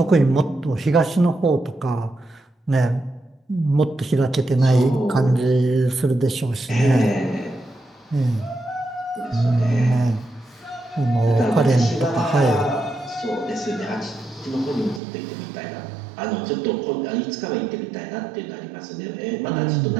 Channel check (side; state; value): left; drops out; at 15.0 s